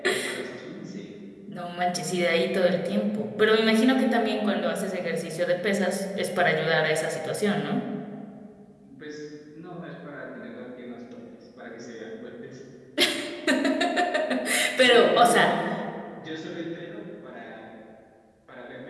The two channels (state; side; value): identical; both; correlation 1.00